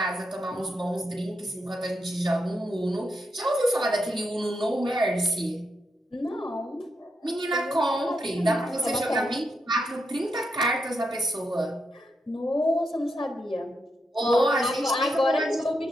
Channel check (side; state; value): both; normal; correlation 0.83